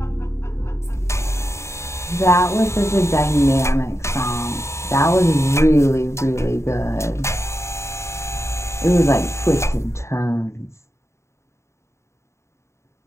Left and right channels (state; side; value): late; right; 0.14 ms